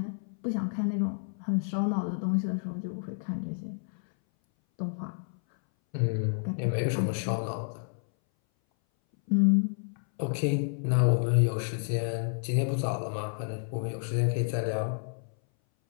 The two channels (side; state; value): right; silent; 58 dB below the other